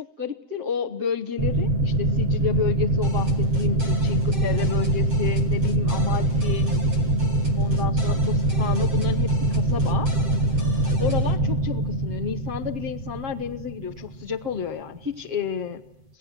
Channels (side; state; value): left; late; 7.7 ms